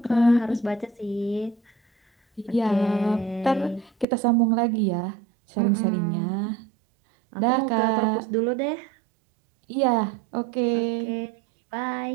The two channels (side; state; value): left; drops out; at 4.0 s